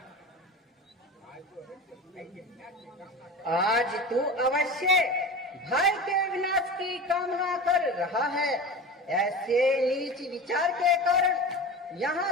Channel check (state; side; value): normal; both; correlation 0.30